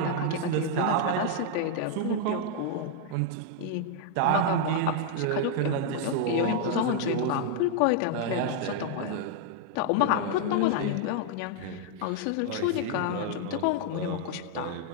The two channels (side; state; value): both; different; correlation 0.00